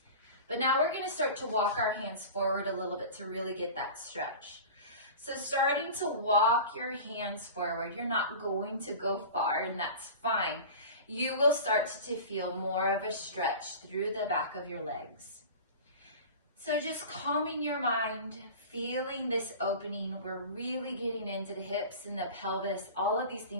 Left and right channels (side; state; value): both; inverted; correlation -0.35